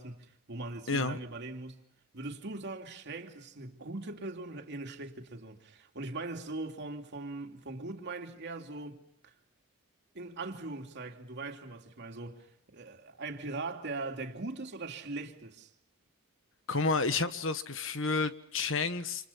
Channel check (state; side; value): normal; both; correlation 0.13